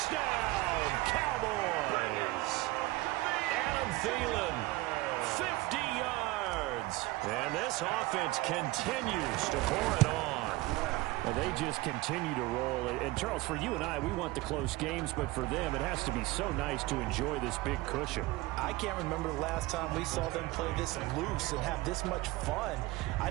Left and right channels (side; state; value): left; quieter; 20.0 dB